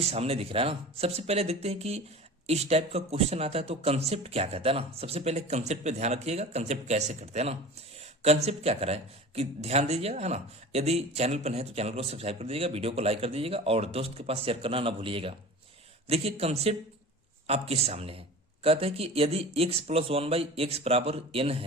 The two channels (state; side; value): normal; both; correlation 0.37